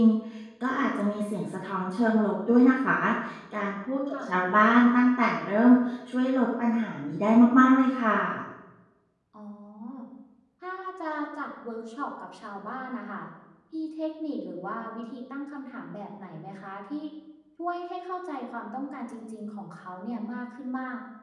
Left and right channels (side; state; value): both; identical; correlation 1.00